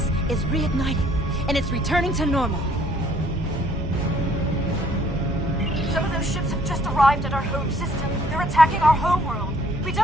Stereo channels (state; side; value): normal; both; correlation 0.61